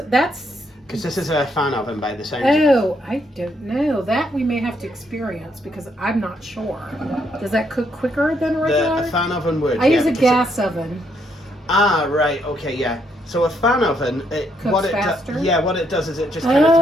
Because this is a fan oven by the sound. Oh, I don't know. That we may have to experience because I'm not sure. Does that cook quicker than regular? A fan oven would. I use a gas oven. Ah, right. Okay, yeah. So a fan oven, what it does is it just kind of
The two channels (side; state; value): both; normal; correlation 0.74